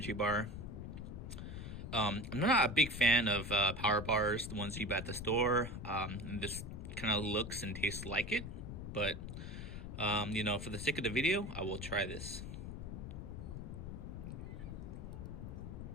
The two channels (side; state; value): left; noise; rumble, 8 dB below the sound